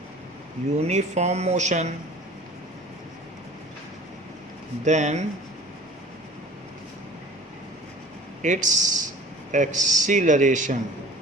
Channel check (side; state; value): both; normal; correlation 0.44